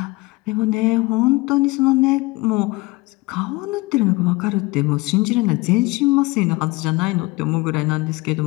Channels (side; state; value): right; quieter; 22.5 dB